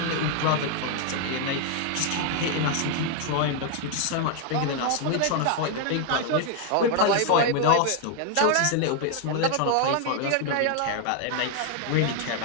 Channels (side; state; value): both; different; correlation 0.00